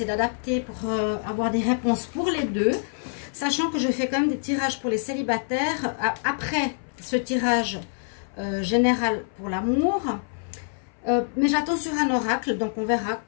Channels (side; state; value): right; silent; 59 dB below the other